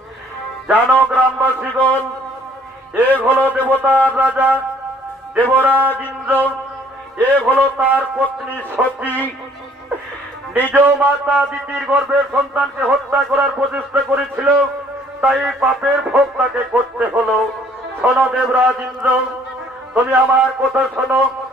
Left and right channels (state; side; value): normal; both; correlation 0.59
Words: জানো গ্রামবাসীগণ, এ হলো দেবতার রাজা দেবরাজ ইন্দ্র, এ হলো তার পত্নী সতী। নিজ মাতা দিতির গর্ভের সন্তানকে হত্যা করার প্রচেষ্টা করেছিল, তাই পাপের ভোগ তাকে করতে হলো। শোনো দেবরাজ ইন্দ্র, তুমি আমার কথা শোনো,